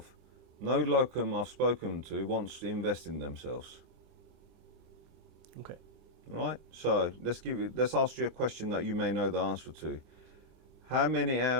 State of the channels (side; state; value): left; late; 26 ms